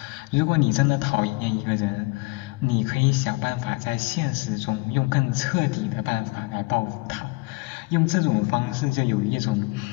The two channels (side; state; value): right; quieter; 25.5 dB